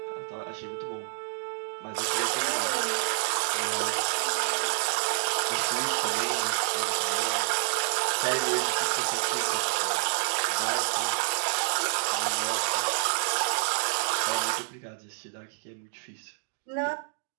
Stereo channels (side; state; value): left; silent; 59 dB below the other